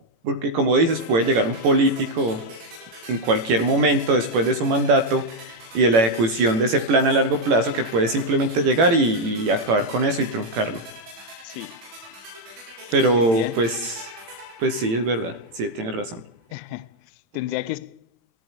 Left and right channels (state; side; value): late; left; 18 ms